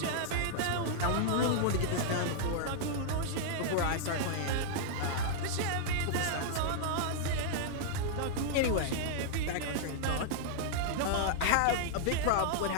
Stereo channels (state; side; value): different; both; correlation -0.01